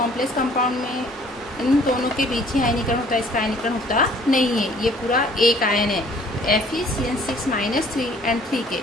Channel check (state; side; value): normal; both; correlation 0.56